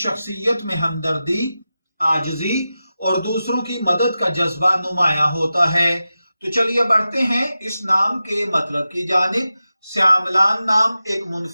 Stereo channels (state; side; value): inverted; both; correlation -0.93